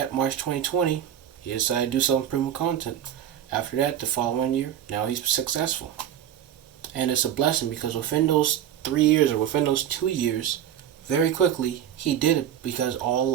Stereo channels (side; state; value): left; quieter; 10.4 dB